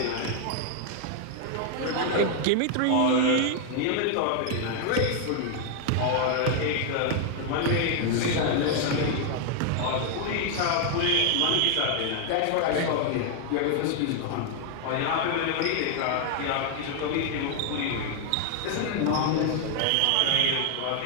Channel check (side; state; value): both; different; correlation 0.00